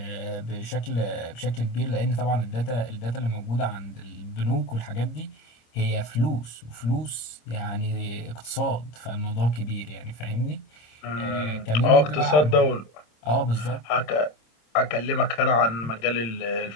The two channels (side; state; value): right; late; 26 ms